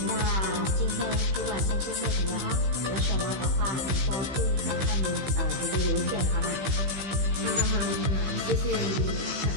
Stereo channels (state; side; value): late; left; 15 ms